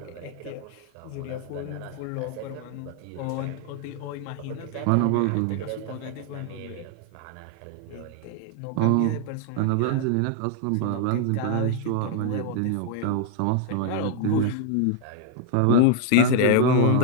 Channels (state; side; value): different; both; correlation 0.00